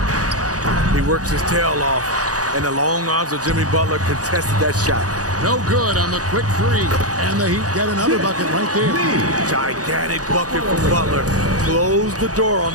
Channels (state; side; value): late; left; 0.67 ms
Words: He works his tail off, and the long arms of Jimmy Butler contested that shot. No good on the quick three. And the Heat get another bucket right there. Gigantic bucket from Butler. Close the door on